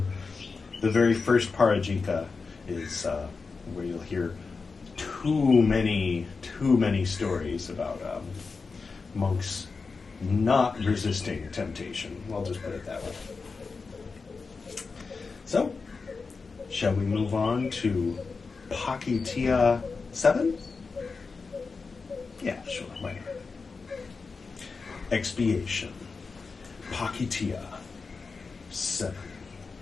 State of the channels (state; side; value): quieter; right; 4.5 dB